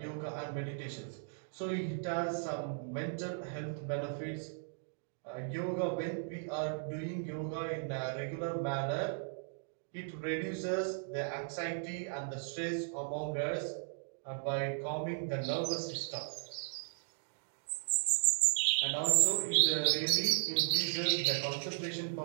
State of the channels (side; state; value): left; silent; digital silence